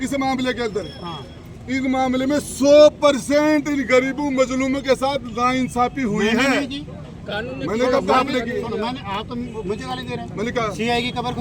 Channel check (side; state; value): both; identical; correlation 1.00